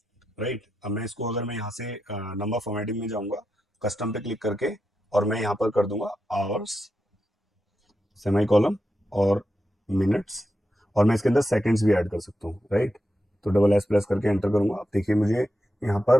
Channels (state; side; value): normal; both; correlation 0.87